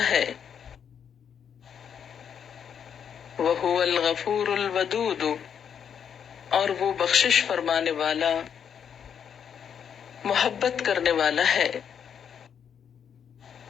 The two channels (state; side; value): quieter; right; 7.9 dB